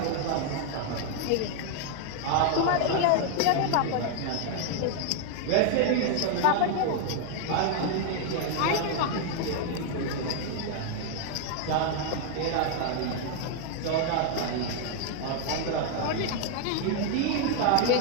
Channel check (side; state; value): both; different; correlation 0.00